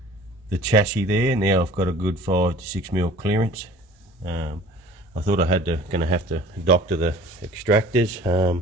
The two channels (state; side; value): normal; both; correlation 0.47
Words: the chassis there. Now I've got a good 5 to 6mm clearance. I thought I gonna have to doctor the extractors.